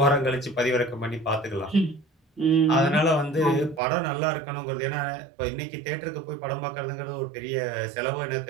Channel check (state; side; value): drops out; left; at 3.8 s